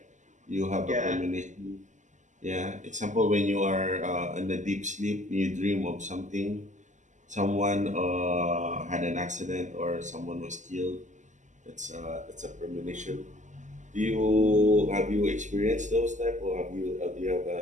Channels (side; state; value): left; late; 0.35 ms